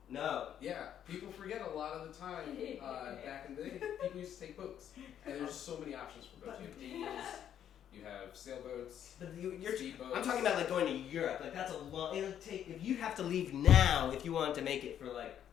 No. Yeah, people forget a lot of the time back in the day, people used to take boats. And there's so many options for boats. You have canoes, you have sailboats, But speedboats. I'm talking about like going to Europe. Like that's a long. It'll take if you have to leave now if you want to make it for like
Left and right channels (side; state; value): right; quieter; 9.9 dB